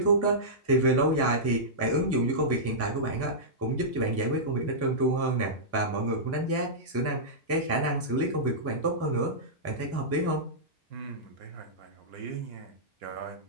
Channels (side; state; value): both; normal; correlation -0.14